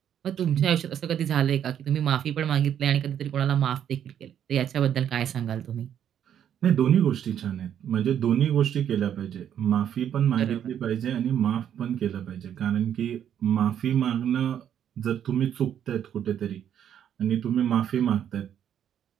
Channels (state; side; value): quieter; left; 9.6 dB